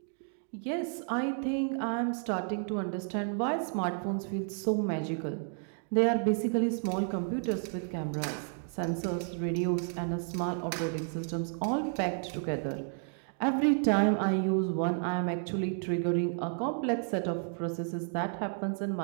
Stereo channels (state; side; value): silent; left; 57 dB below the other